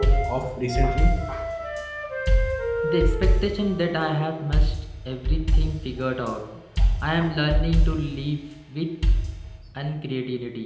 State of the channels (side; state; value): both; identical; correlation 1.00